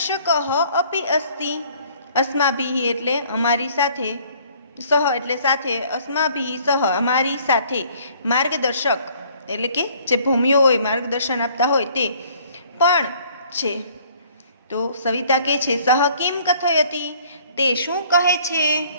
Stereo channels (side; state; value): both; inverted; correlation -0.58